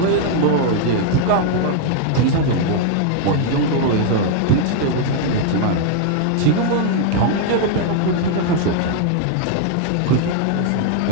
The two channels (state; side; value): different; both; correlation 0.00